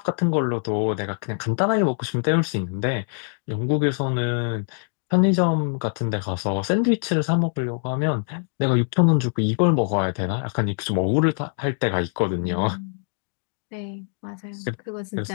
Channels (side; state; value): right; silent; 63 dB below the other